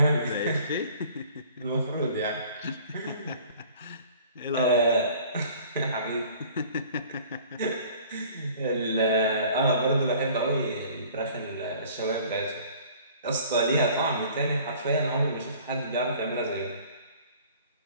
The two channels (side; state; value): both; inverted; correlation -0.50